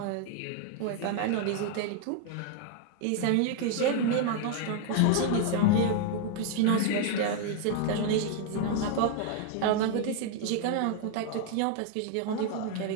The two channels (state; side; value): different; both; correlation 0.00